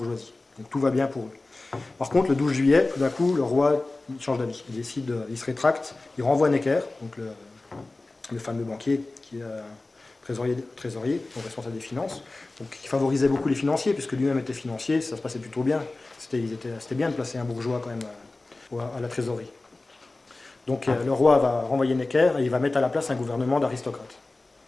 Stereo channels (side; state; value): right; quieter; 3.1 dB